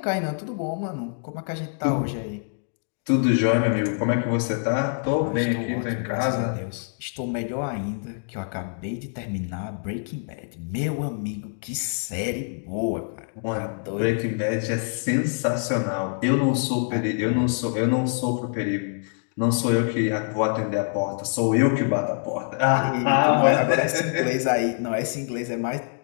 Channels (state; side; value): silent; right; 62 dB below the other